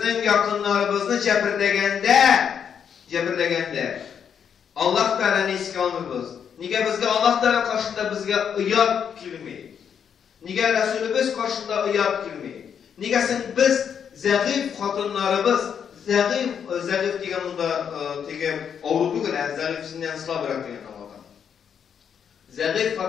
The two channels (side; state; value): right; quieter; 7.8 dB